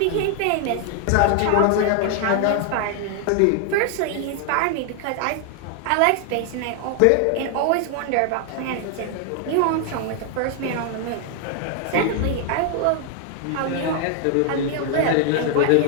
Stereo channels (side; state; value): both; different; correlation 0.00